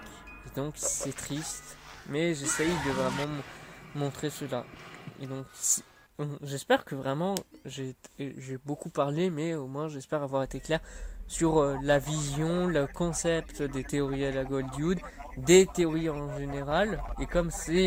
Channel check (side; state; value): both; identical; correlation 1.00